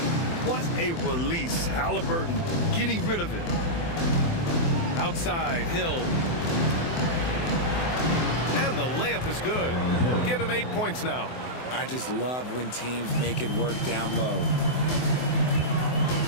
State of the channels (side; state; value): right; late; 24 ms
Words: What a release. Halliburton getting rid of it. Outside, Hill. And the layup is good. Give him 8 points now. I just love when teams make it work down low.